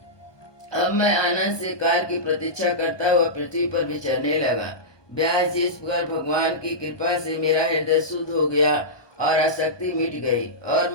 अब मैं आनंद से काल की प्रतीक्षा करता हुआ पृथ्वी पर विचरने लगा। व्यास जी, इस प्रकार भगवान की कृपा से मेरा हृदय शुद्ध हो गया और आसक्ति मिट गई और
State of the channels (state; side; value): late; right; 1.2 ms